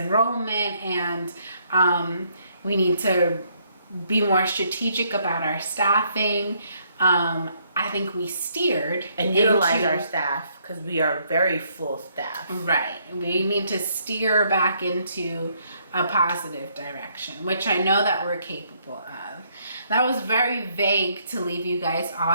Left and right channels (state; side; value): inverted; both; correlation -0.70